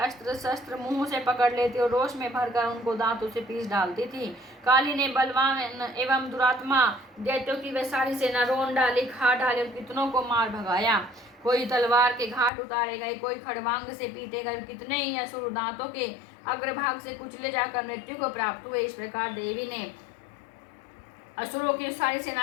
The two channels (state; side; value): drops out; right; at 12.5 s